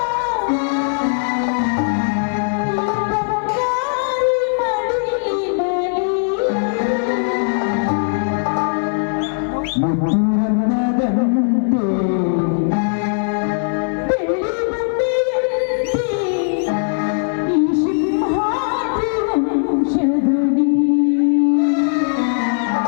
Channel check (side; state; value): right; silent; digital silence